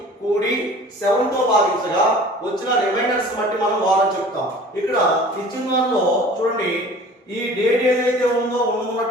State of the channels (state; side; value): normal; both; correlation 0.45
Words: కూడి 7 తో భాగించగా వచ్చిన రిమైండర్స్ బట్టి మనం వారం చెప్తాం. ఇక్కడ ఇచ్చిన దానిలో చూడండి, ఈ డేట్ ఏదైతే ఉందో